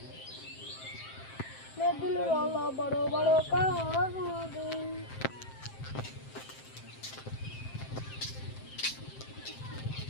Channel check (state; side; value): late; right; 7.6 ms